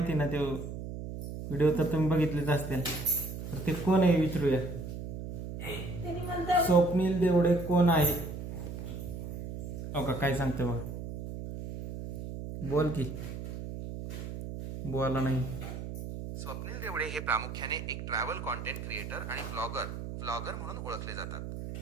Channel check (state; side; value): noise; right; hum, 7 dB below the sound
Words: ना, ते व्हिडिओ तर तुम्ही बघितलेच असतील. तर ते कोण आहे विचारूया. स्वप्नील देवडे कोण आहे. हो का, काय सांगते बघ, बोल की. बोला नाही. स्वप्नील देवडे हे प्रामुख्याने एक ट्रॅव्हल कॉन्टेंट क्रिएटर आणि व्लॉगर म्हणून ओळखले जातात.